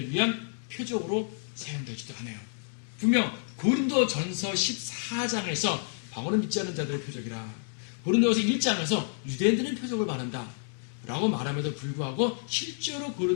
위한 표적으로 사용되지도 않아요. 분명 고린도 전서 14장에서 방언을 믿지 않는 자들의 표적이라, 고린도서 1장에서 유대인들은 표적을 말한다 라고 말함에도 불구하고 실제로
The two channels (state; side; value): silent; right; 58 dB below the other